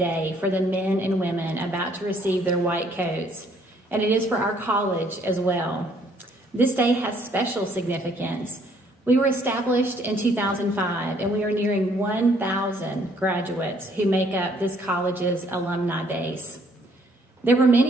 for the men and women about to receive their white coats, and it is for our college as well. This day has special significance. We were established in 2005, and we are nearing 1,000 graduates who make up this college's alumni base. There were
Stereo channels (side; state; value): both; normal; correlation 0.64